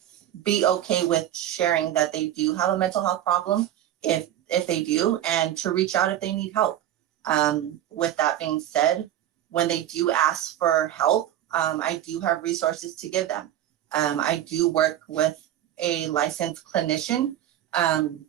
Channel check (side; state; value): left; quieter; 12.0 dB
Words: be okay with sharing that they do have a mental health problem, if they do, and to reach out if they need help. With that being said, when they do ask for help, I do have resources to give them. I do work with a licensed clinician